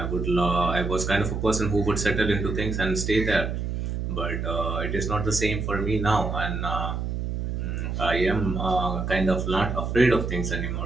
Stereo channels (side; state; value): right; noise; hum, 3 dB below the sound